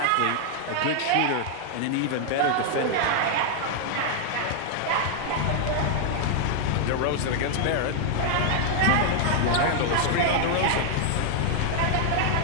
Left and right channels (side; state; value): both; different; correlation 0.00